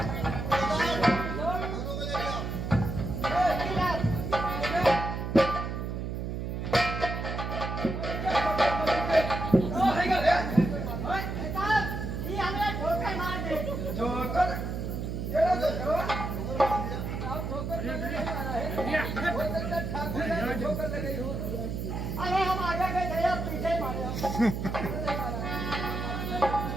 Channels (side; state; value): right; noise; hum, 4 dB below the sound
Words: अरे हम आगे गए थे, आप पीछे मारे।